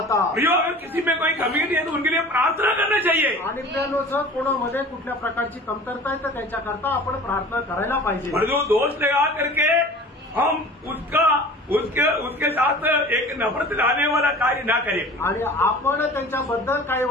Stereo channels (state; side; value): normal; both; correlation 0.41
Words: प्रियो, अगर किसी में कोई कमी नहीं है तो उनके लिए प्रार्थना करना चाहिए। आणि प्रियानो, जर कोणामध्ये कुठल्या प्रकारची कमतरता आहे तर त्यांच्याकरता आपण प्रार्थना करायला पाहिजे। और जो दोष लगा करके हम उसके साथ एक नफरत लाने वाला कार्य ना करें, आणि आपण त्यांच्याबद्दल काही